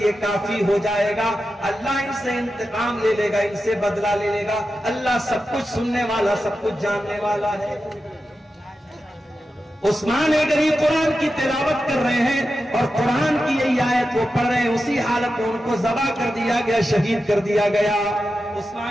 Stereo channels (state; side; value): normal; both; correlation 0.91